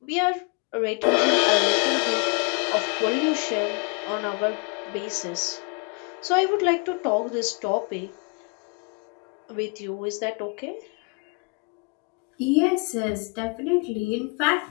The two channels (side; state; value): right; quieter; 33.4 dB